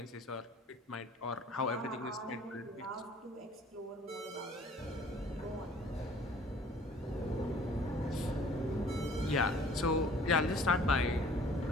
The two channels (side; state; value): both; normal; correlation 0.52